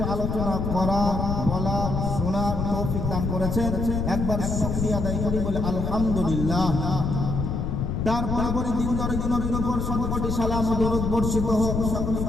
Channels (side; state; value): left; noise; rumble, 1 dB below the sound